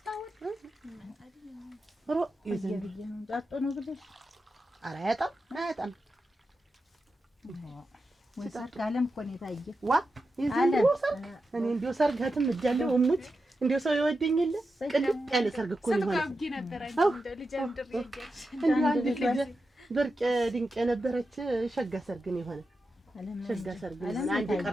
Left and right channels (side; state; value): both; normal; correlation 0.90